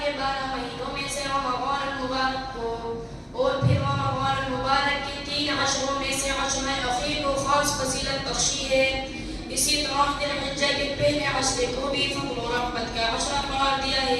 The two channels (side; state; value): both; identical; correlation 1.00